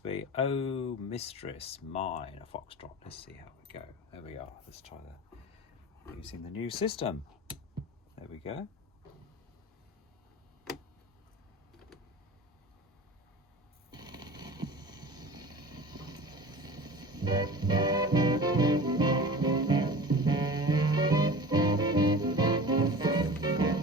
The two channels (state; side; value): normal; both; correlation 0.38